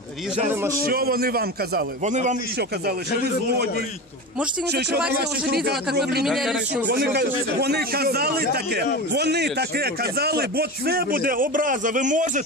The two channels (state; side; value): normal; both; correlation 0.26